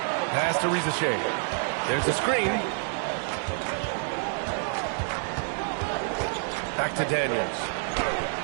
Pass to Risacher. There's a screen. Back to Daniels.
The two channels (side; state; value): left; silent; 56 dB below the other